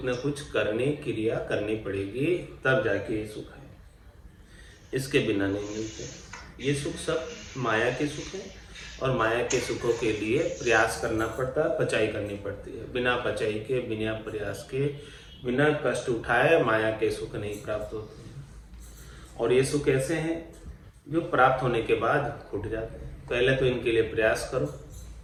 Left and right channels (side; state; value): both; identical; correlation 1.00